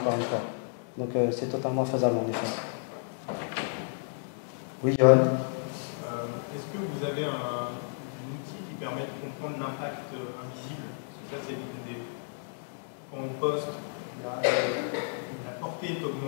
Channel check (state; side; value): silent; right; digital silence